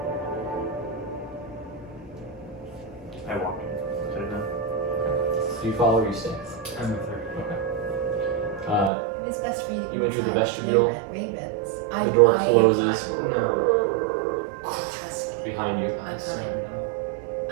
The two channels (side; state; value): left; drops out; at 8.9 s